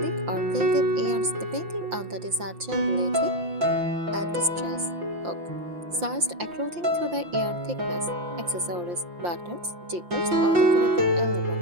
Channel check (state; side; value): late; left; 5.7 ms